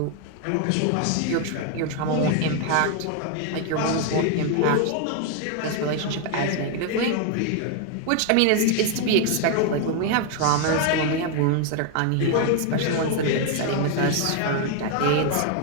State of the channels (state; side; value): different; both; correlation 0.01